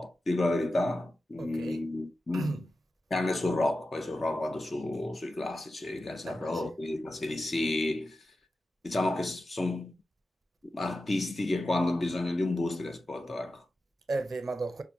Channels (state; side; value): normal; both; correlation 0.92